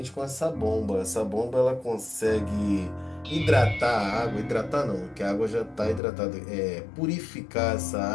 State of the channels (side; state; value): right; drops out; at 6.0 s